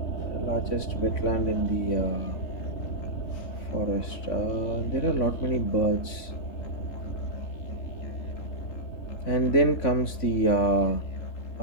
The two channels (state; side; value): late; right; 3.5 ms